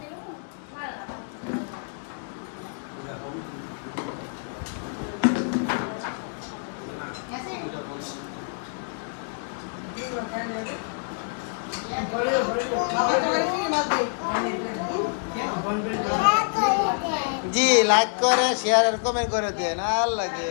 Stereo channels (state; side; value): silent; right; digital silence